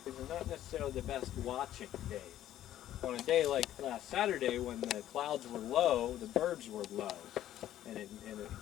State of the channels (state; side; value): quieter; right; 12.4 dB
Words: These are not necessarily the best watching days. On a day like last Saturday, when the clouds were low, the birds were low, and it